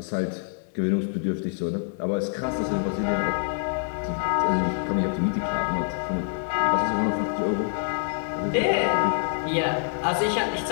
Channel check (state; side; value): silent; right; digital silence